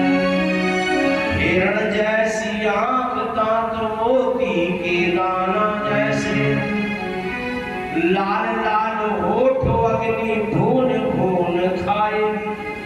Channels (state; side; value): identical; both; correlation 1.00